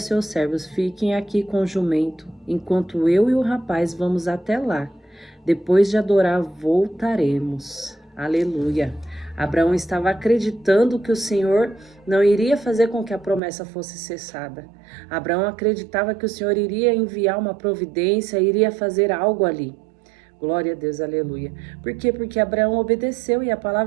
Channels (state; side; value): drops out; left; at 13.4 s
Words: servos: fiquem aqui com o jumento, enquanto eu e o rapaz vamos até lá. Depois de adorar, voltaremos. Aleluia. Abraão estava acreditando que o Senhor não iria fazer com que a promessa fosse cessada. Abraão acreditava que o Senhor iria enviar uma providência, iria fazer algo ali. Glória a Deus, aleluia. Por quê? Porque Abraão obedeceu e a